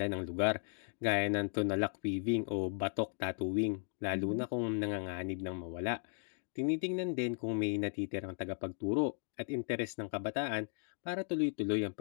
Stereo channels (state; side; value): silent; right; digital silence